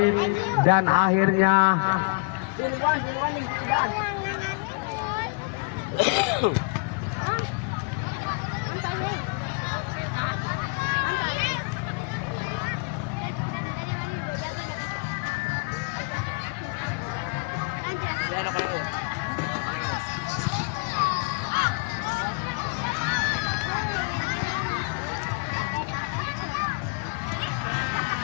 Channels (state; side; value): quieter; right; 31.5 dB